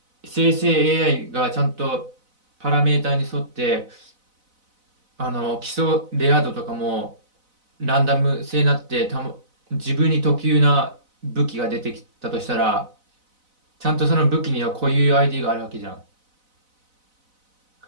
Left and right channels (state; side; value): late; left; 4.0 ms